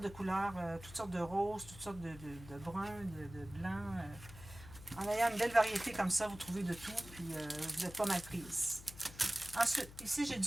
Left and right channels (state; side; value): noise; left; hum, 16 dB below the sound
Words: de couleurs, toutes sortes de roses, toutes sortes de bruns, de blancs. En ayant une belle variété comme ça, vous trouvez de tout, puis vous n'êtes pas mal prise. Ensuite, ici, j'ai